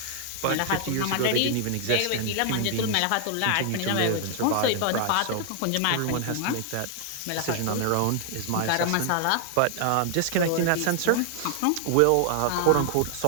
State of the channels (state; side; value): different; both; correlation 0.00